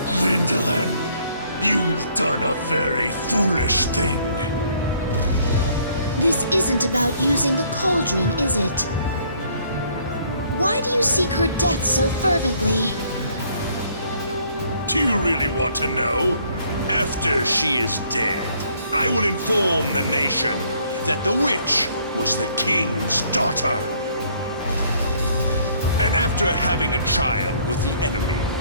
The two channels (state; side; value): inverted; both; correlation -0.63